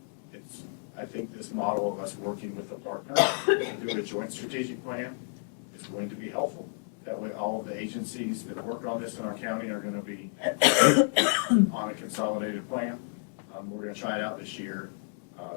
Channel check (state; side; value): silent; right; 57 dB below the other